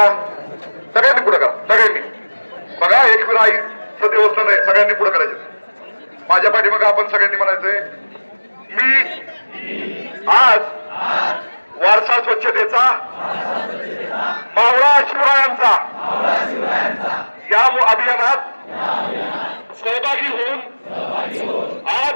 सगळ्यांनी, पुढे करा सगळ्यांनी. बघा एकविरा आईचं देवस्थान आहे, सगळ्यांनी पुढे करायचं. माझ्या पाठीमाग आपण सगळ्यांनी म्हणायचंय मी आज वारसा स्वच्छतेचा मावळा शिवरायांचा या अभियानात सहभागी होऊन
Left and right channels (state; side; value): inverted; both; correlation -1.00